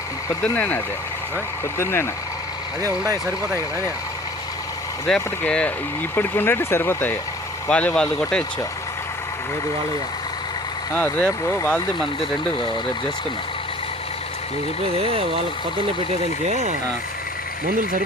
పొద్దున్నేనా అదే పొద్దున్నేనా అదే ఉన్నాయి సరిపోతాయి కదా అని రేపటికి ఇప్పటికి ఉండేవి సరిపోతాయి వాళ్ళు కొట్టేయచ్చు ఏది వాళ్ళయ్యా రేపు వాళ్ళది మనది రెండు రేపు చేసుకున్నాం నేను చెప్పేది వాళ్ళకి పొద్దున్నే పెట్టేదానికి మందులు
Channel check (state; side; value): normal; both; correlation 0.48